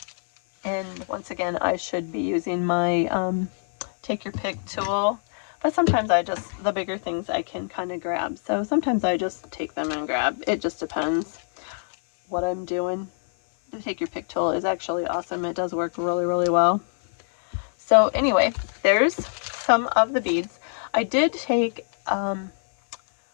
And once again, I should be using my take your pick tool, but sometimes the bigger things I can kind of grab. So sometimes I just take them and grab. It just depends what I'm doing. The take your pick tool is actually awesome. It does work really, really well. So anyway, there's some of the beads. I did take,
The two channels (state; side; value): silent; right; digital silence